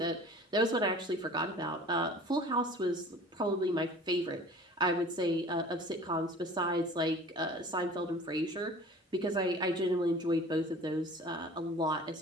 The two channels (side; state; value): both; normal; correlation 0.45